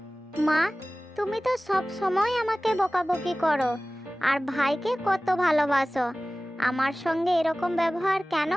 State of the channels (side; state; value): both; normal; correlation 0.98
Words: মা, তুমি তো সব সময় আমাকে বকাবকি করো আর ভাইকে কত ভালোবাসো। আমার সঙ্গে এরকম ব্যবহার কেন